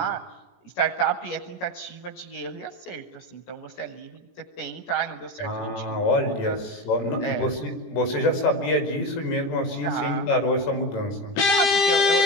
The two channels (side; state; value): right; late; 18 ms